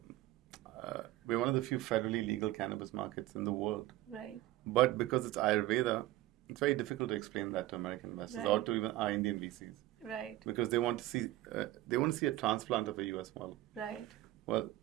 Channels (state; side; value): quieter; left; 16.0 dB